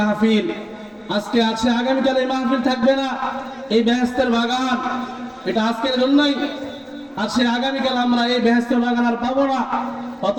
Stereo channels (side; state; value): both; identical; correlation 1.00